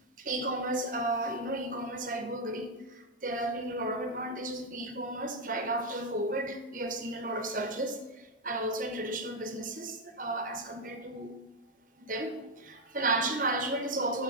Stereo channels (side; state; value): both; normal; correlation 0.03